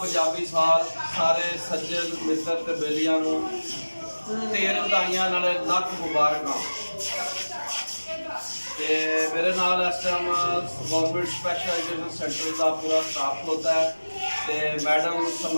पंजाबी साल सारे सज्जन मित्र ते बेलियां नूं ढेर बधाइयां नाल लख मुबारकां। ते मेरे नाल इस time government special education centre का पूरा स्टाफ होता है ते मैडम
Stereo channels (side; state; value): both; inverted; correlation -1.00